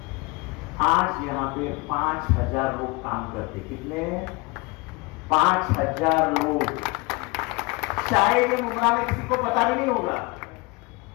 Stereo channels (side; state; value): right; quieter; 26.4 dB